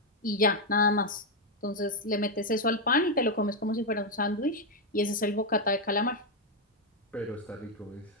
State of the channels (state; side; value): normal; both; correlation 0.02